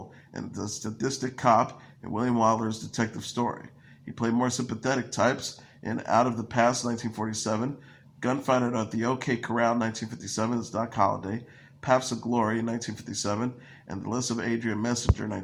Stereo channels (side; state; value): both; identical; correlation 1.00